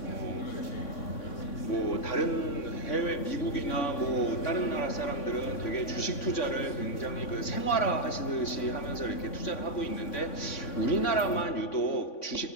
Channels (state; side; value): late; right; 3.6 ms